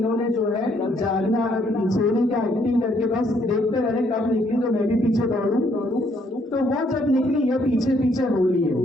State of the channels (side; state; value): both; normal; correlation 0.69